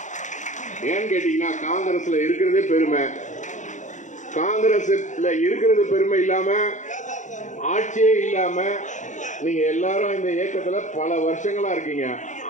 ஏன்னு கேட்டீங்கன்னா, காங்கிரஸ்ல இருக்கிறதே பெருமை. காங்கிரஸ்ல இருக்கிறது பெருமை இல்லாம, ஆட்சியே இல்லாம நீங்க எல்லாரும் இந்த இயக்கத்துல பல வருஷங்களா இருக்கீங்க.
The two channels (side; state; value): right; late; 0.35 ms